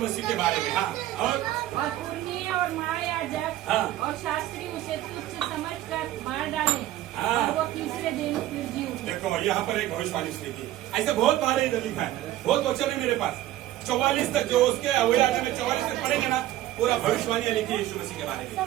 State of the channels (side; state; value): left; quieter; 14.3 dB